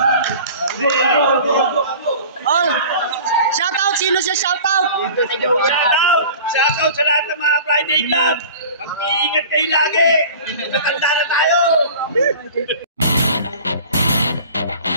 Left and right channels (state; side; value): inverted; both; correlation -0.42